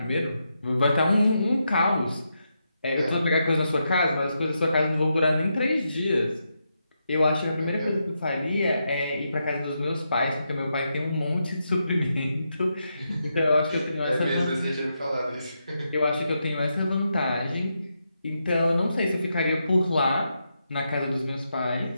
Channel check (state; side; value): inverted; both; correlation -0.84